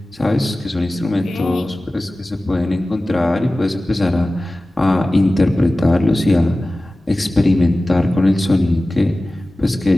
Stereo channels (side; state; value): both; normal; correlation 0.96